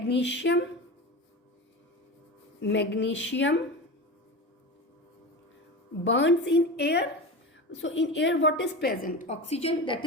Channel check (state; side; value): normal; both; correlation 0.26